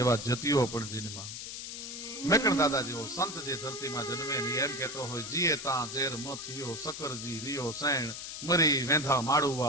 એવા જતીઓ પણ જન્મા. મેકણ દાદા જેવો સંત જે ધરતીમાં જન્મે ને એમ કેતો હોય જીએ તા ઝેર મથિયો સકરજી રિયો સૈણ મરી વેંધા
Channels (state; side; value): noise; left; hiss, 8 dB below the sound